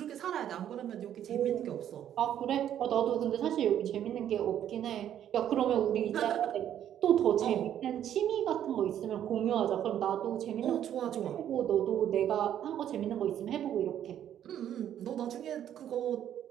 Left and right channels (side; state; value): left; quieter; 10.5 dB